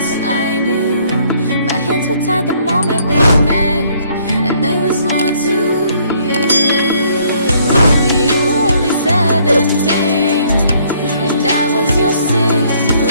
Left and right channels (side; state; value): both; inverted; correlation -0.64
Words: I knew. My hands were tied the moment we met, and there was more to you. You were only 17, and I was your sixth